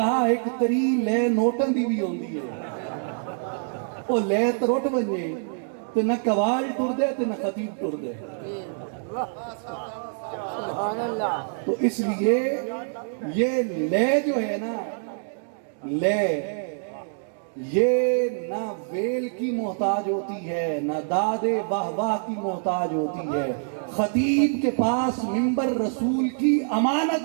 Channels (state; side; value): silent; left; digital silence